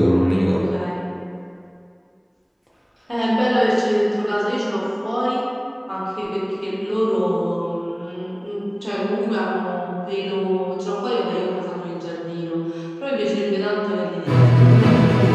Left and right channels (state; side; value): identical; both; correlation 1.00